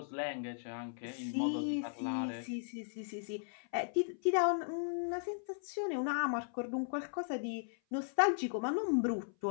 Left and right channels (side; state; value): right; silent; 53 dB below the other